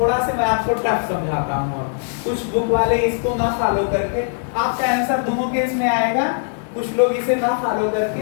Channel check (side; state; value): right; silent; 66 dB below the other